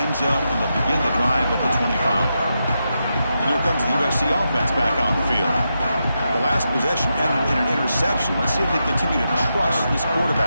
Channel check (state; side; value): inverted; both; correlation -0.86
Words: end zone, and they'll begin the drive at the 25. And here comes the USC offense back on the field. The last possession ended in an interception. Let's see if they continue to trust this